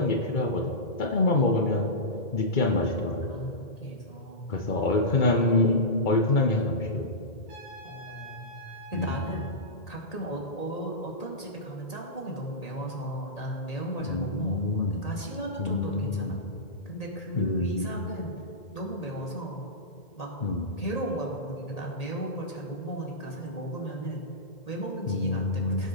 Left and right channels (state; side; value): late; right; 1.8 ms